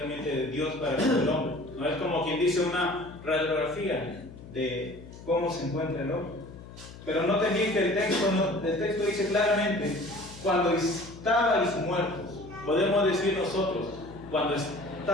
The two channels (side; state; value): left; noise; hum, 16 dB below the sound